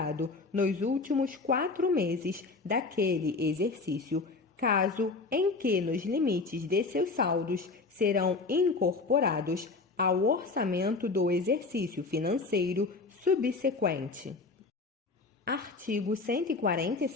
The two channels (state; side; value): quieter; right; 3.9 dB